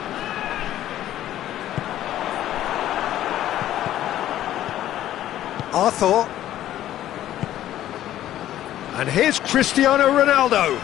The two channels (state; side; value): quieter; right; 12.8 dB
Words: Arthur. And here's Cristiano Ronaldo.